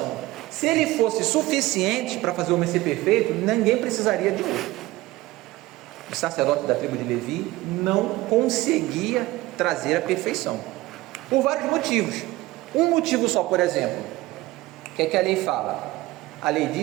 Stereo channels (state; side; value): quieter; left; 18.6 dB